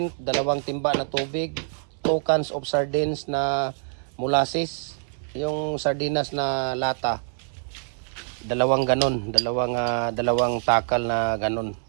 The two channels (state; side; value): silent; left; 62 dB below the other